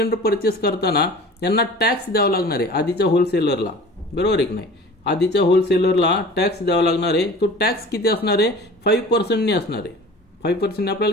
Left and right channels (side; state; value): both; normal; correlation 0.42